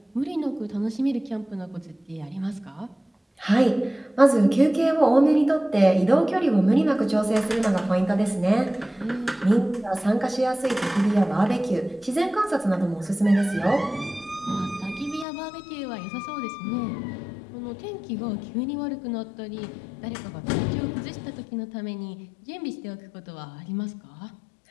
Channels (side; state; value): right; drops out; at 15.2 s